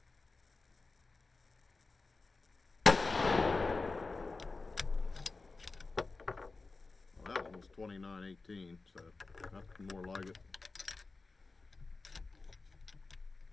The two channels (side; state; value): right; quieter; 3.8 dB